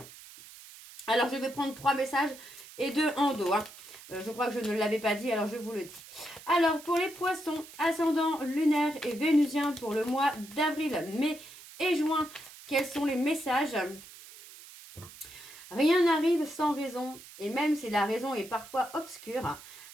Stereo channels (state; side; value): noise; right; hiss, 18 dB below the sound